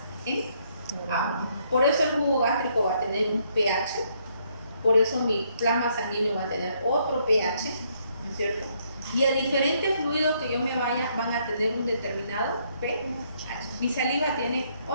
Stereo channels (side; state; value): both; inverted; correlation -0.71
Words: en agua. Por eso el jugo gástrico va a tener un pH, por eso mi plasma sanguíneo va a tener otro pH, ¿no es cierto? Y a diferentes fluidos que yo me vaya van a tener un determinado pH. Mi saliva tiene